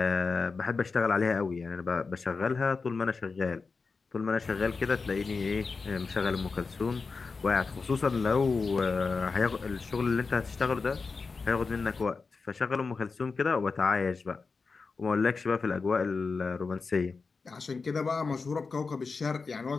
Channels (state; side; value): quieter; right; 4.5 dB